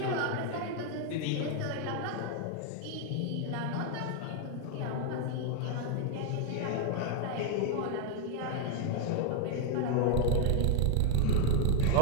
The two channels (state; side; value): different; both; correlation 0.01